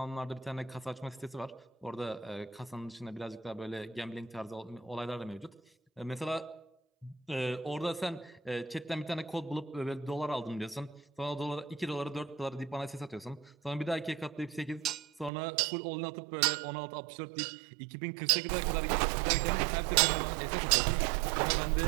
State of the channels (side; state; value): left; drops out; at 15.3 s